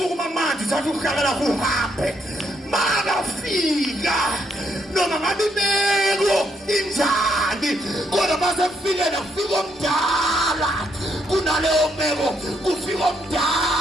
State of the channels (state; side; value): normal; both; correlation 0.74